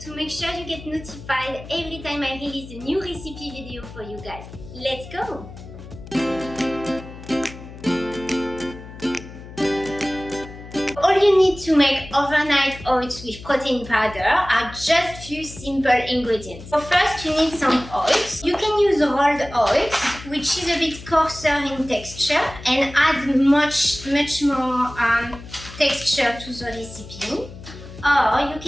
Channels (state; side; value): noise; left; hum, 15 dB below the sound